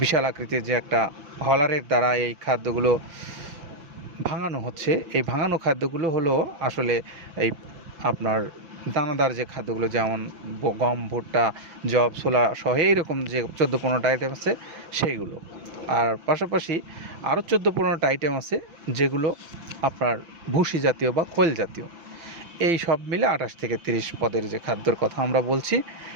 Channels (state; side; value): late; left; 5.9 ms